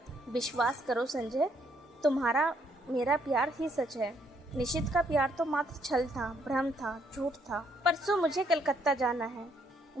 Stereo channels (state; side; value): normal; both; correlation 0.70